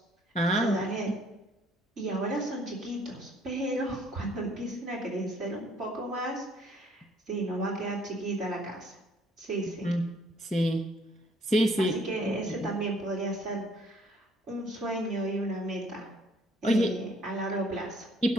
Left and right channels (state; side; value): normal; both; correlation 0.62